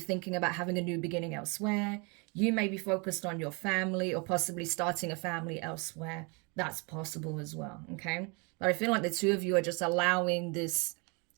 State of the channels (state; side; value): quieter; left; 31.6 dB